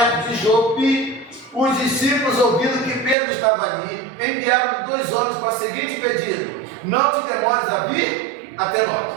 de Jope, os discípulos, ouvindo que Pedro estava ali, enviaram 2 homens para o seguinte pedido: não te demores a vir até nós.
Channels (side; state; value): left; drops out; at 3.2 s